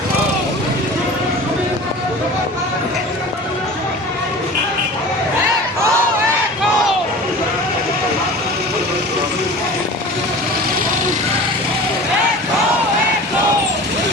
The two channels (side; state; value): both; normal; correlation 0.38